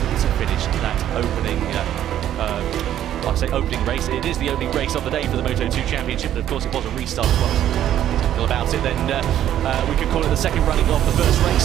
to finish that opening I say opening race. It is the opening race of the day for the Moto2 Championship, but of course it was a restart as well. About it, then we could call it the second running of the first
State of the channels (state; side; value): quieter; left; 11.4 dB